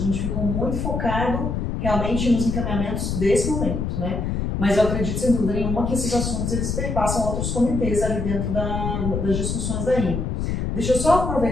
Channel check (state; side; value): noise; left; rumble, 2 dB below the sound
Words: ficou muito focado realmente nos encaminhamentos desse momento, né? Mas eu acredito, sem dúvida nenhuma, que esses assuntos eles perpassam outros comitês ali dentro das discussões da IMO. Deixa eu só